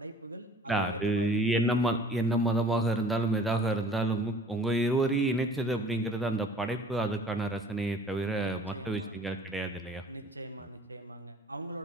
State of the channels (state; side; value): normal; both; correlation 0.50